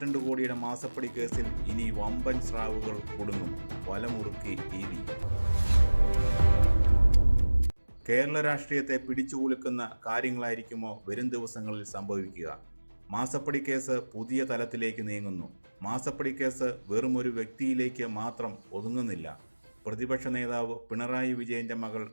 കോടിയുടെ മാസപ്പടി കേസിൽ ഇനി വമ്പൻ സ്രാവുകൾ കുടുങ്ങും. വലമുറുക്കി ED. കേരള രാഷ്ട്രീയത്തെ പിടിച്ചുകുലുക്കുന്ന കാര്യങ്ങളായിരിക്കുമോ വരും ദിവസങ്ങളിൽ സംഭവിക്കുക? മാസപ്പടി കേസ് പുതിയ തലത്തിലേക്ക് നീങ്ങുന്നു. മാസപ്പടി കേസ് വെറും ഒരു വ്യക്തിയിലേക്ക് മാത്രം ഒതുങ്ങുന്നില്ല. പ്രതിപക്ഷ നേതാവ് പിണറായി വിജയന്റെ മകൾ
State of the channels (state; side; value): inverted; both; correlation -1.00